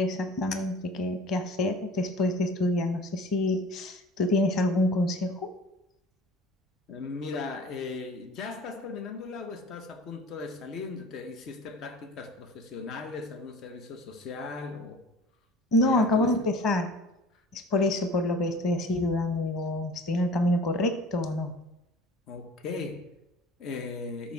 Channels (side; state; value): both; normal; correlation 0.43